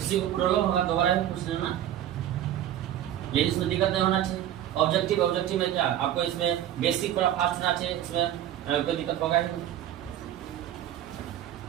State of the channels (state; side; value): quieter; left; 11.6 dB